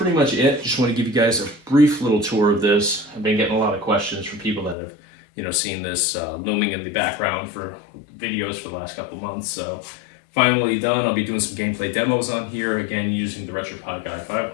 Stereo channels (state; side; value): drops out; right; at 4.8 s